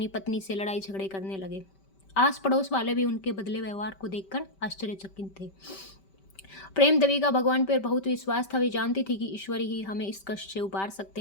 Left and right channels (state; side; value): late; right; 5.2 ms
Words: पत्नी से लड़ाई झगड़े करने लगे। आस पड़ोस वाले भी उनके बदले व्यवहार को देखकर आश्चर्यचकित थे। प्रेम देवी का भगवान पर बहुत विश्वास था। वे जानती थी कि ईश्वर ही हमें इस कष्ट से उबार